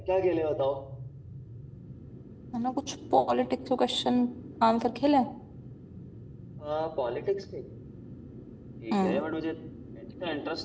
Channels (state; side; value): identical; both; correlation 1.00